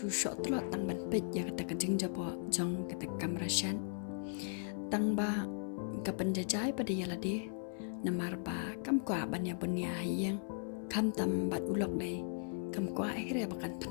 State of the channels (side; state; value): right; silent; 53 dB below the other